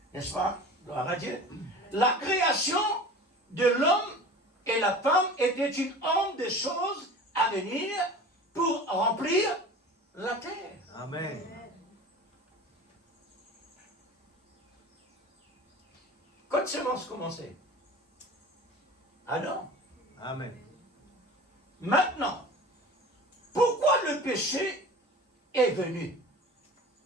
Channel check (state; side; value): normal; both; correlation 0.38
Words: N'est-ce pas? Gloire à Dieu. La création de l'homme et la femme était une ombre de choses à venir pour remplir la terre. Amen. Quand semence commençait? Adam. Amen. Maintenant, pourquoi le péché est venu?